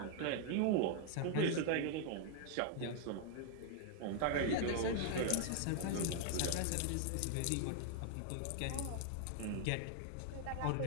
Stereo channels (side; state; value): both; different; correlation 0.00